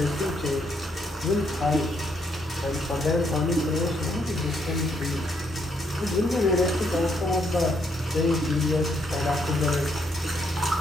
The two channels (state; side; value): normal; both; correlation 0.74